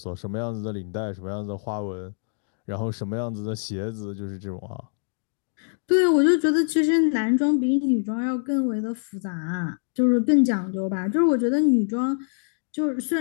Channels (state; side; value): silent; right; digital silence